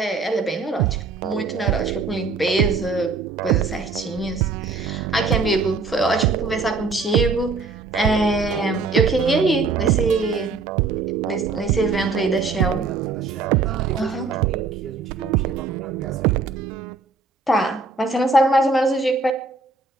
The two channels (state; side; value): quieter; left; 4.1 dB